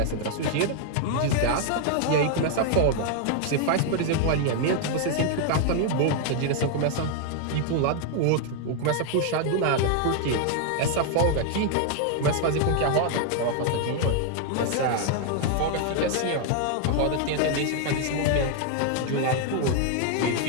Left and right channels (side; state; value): both; different; correlation 0.00